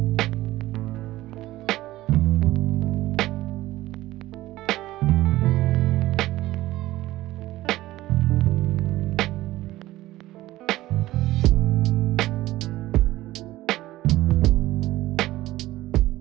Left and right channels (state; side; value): quieter; left; 16.4 dB